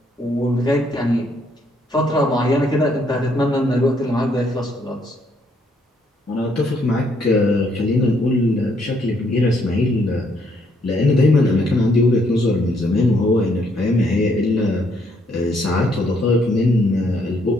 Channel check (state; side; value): normal; both; correlation 0.71